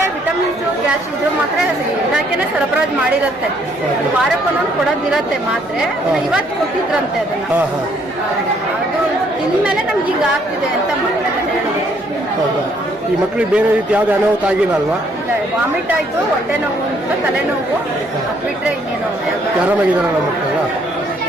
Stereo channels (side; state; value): right; noise; hum, 29 dB below the sound